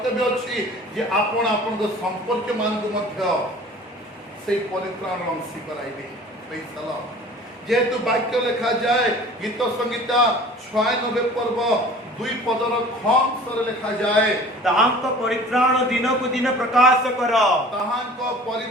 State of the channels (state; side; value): normal; both; correlation 0.45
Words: अछि जे आपण आपण को संपर्क मान को मध्य से परित्राण अंशी कराइबे प्रेज द लॉर्ड जेतु वाक्य लिखा जाए गीत संगीता 96 पर्व 2 पदर खंस रे लिखा जाए ताहांक परित्राण दिन को दिन प्रकाश कर ताहांक